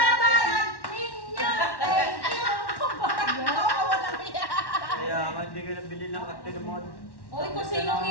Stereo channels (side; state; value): right; late; 1.1 ms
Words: ninyo. Thank you. Kaya nga hindi ka nabili ng katilmon. Uy, kung sinong